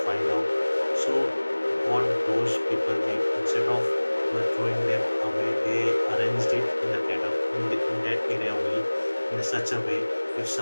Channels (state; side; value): inverted; both; correlation -1.00